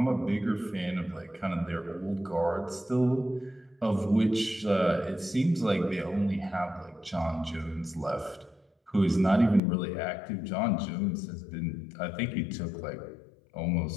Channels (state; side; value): drops out; right; at 9.6 s